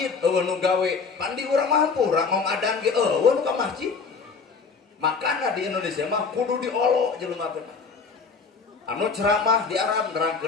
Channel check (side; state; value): right; quieter; 5.1 dB